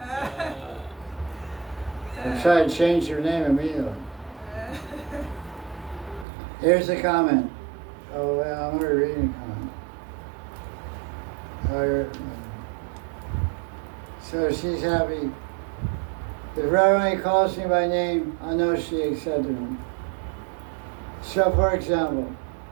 I'll try to change your name immediately. Here's the comment. Oh, well, I'm already reading a comment. So she's happy. If Radharani calls me by name, I know she accepted me. So, for example,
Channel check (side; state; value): left; drops out; at 6.2 s